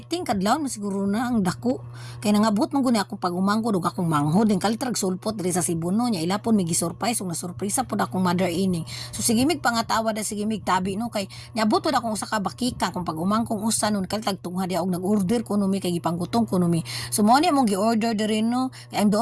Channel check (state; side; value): identical; both; correlation 1.00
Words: kadlaw na siguro na ang dako. Kaya nangabot man guni akong pag-umangko, dug akong manghod. Din kalitrag sulpot diri sa Cebuno niya. Ilapon may gisurprise, ug nasurpresa pod akong mother ining. So sige mig pangatawa da sige mig tabi no kay niabot pod akong usa ka bakika kung pag-umangkong usa nun kalitag tungha dia og nag-order kuno mi kay gipanggutong kuno mi. So mo ni among gi-order diri no. Kay ang